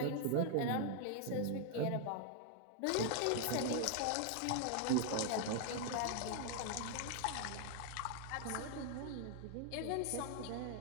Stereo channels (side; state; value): both; different; correlation 0.00